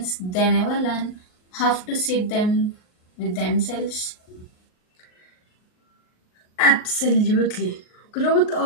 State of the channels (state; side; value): late; right; 38 ms